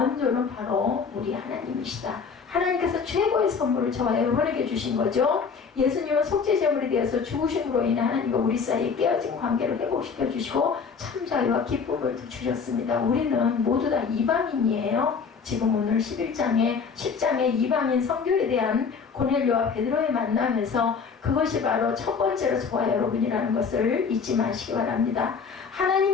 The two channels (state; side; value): quieter; right; 5.7 dB